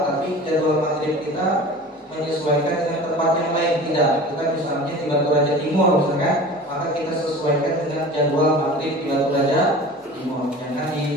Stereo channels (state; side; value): normal; both; correlation 0.38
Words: tapi jadwal maghrib kita menyesuaikan dengan tempat yang lain. Tidak, kita misalnya di Batu Raja Timur misalkan, maka kita sesuaikan dengan jadwal maghrib di Batu Raja Timur. Jangan